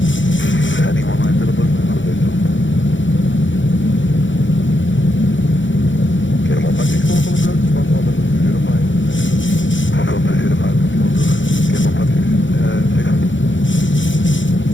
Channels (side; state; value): right; late; 0.55 ms